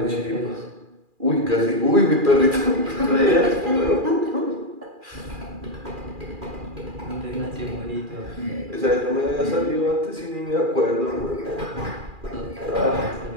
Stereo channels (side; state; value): left; late; 2.4 ms